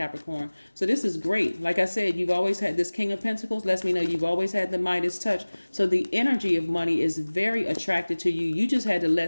So this is great. Like I said, you've always had this King of Pentacles. Lets me know you've always had the Midas touch. So the energy of money is very attracted to you. You just had to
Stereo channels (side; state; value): both; inverted; correlation -1.00